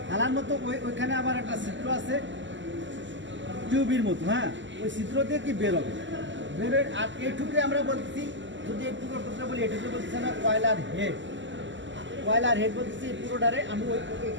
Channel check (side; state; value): left; late; 0.54 ms